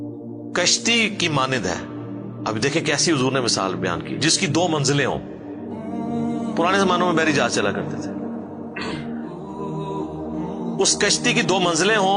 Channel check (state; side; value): identical; both; correlation 1.00